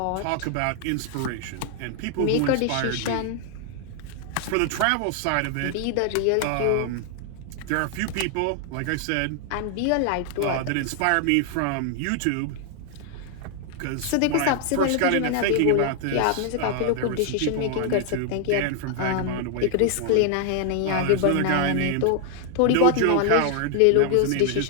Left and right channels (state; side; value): different; both; correlation 0.00